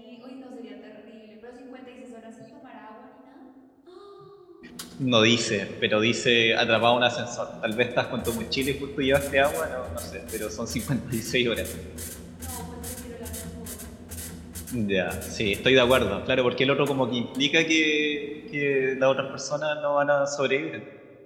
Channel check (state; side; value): identical; both; correlation 1.00